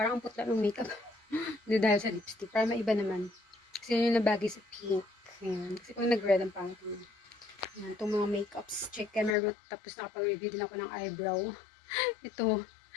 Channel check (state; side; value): drops out; right; at 9.3 s